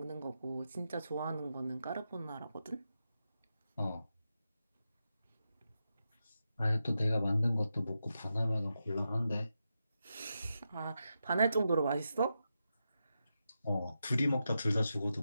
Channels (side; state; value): both; inverted; correlation -0.88